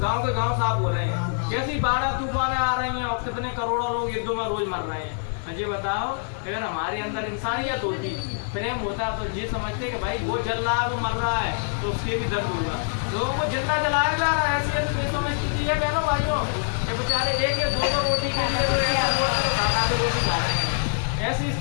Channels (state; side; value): silent; right; 59 dB below the other